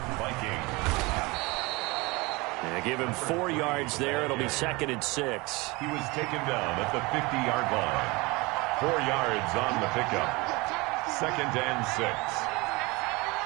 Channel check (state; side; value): quieter; left; 24.5 dB